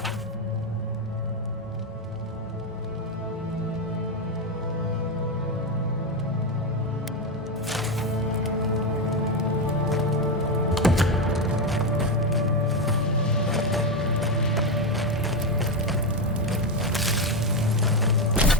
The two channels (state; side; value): normal; both; correlation 0.09